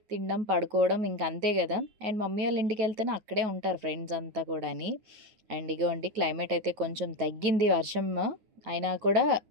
తినడం, పడుకోవడం, ఇంకంతే కదా. అండ్ మమ్మీ వాళ్ళ ఇంటికి వెళ్తేనే అక్కడే ఉంటారు ఫ్రెండ్స్ అంతా కూడాని. అండ్ ఇగోండి, క్లైమేట్ అయితే కొంచెం తగ్గింది వర్షం అయినా కూడా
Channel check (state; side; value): late; left; 8.9 ms